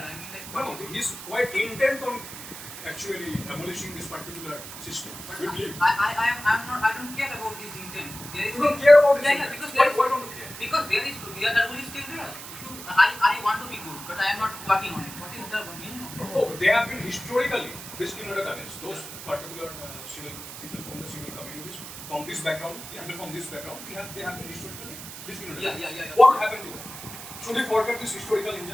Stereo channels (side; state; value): right; noise; hiss, 12 dB below the sound